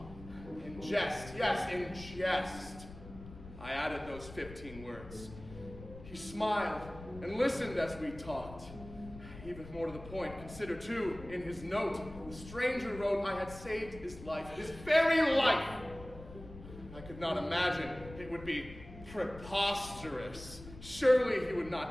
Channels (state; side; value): noise; left; rumble, 15 dB below the sound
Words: in jest, yes, in jest. I added those 15 words. He smiled and listened as we talked. Even more to the point, consider too, in his note, the stranger wrote I had saved his life, his very life. I could not imagine it would be preposterous. Surely he would